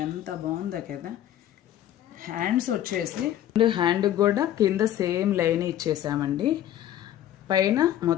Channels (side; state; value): right; quieter; 11.9 dB